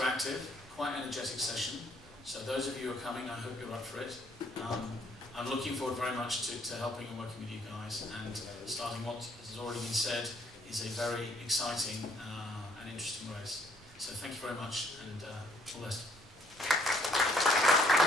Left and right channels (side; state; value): right; noise; rumble, 23 dB below the sound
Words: quite energetic session. So those of you who are coming, I hope you're up for it. I'm looking forward very much to helping and working with you guys, and starting what has already been said is a very exciting and interesting race. So thank you very much, and all the best.